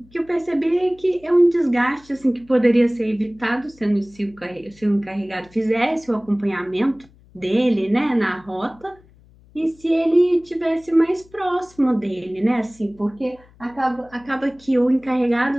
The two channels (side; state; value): left; noise; hum, 27 dB below the sound